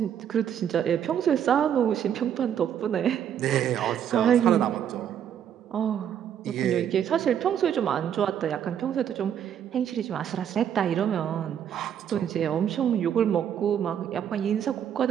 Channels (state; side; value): quieter; left; 9.2 dB